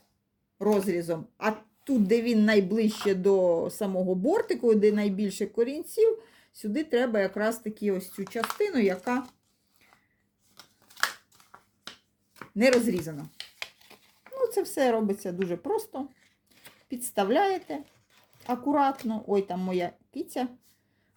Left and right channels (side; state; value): both; identical; correlation 1.00